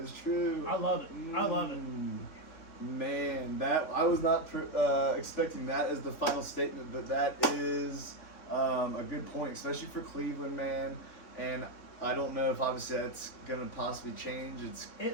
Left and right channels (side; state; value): right; late; 3.6 ms